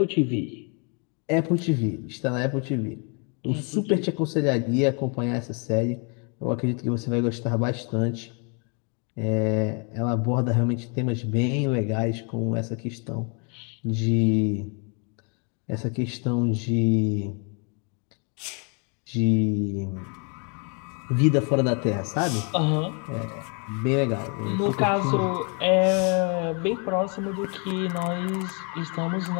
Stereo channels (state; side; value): quieter; right; 36.2 dB